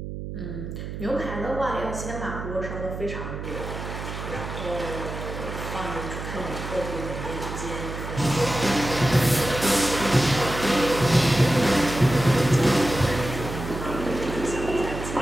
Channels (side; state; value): right; noise; hum, 7 dB below the sound